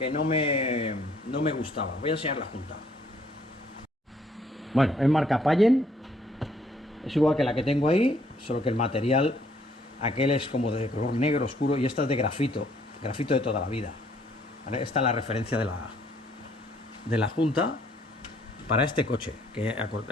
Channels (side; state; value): both; normal; correlation 0.65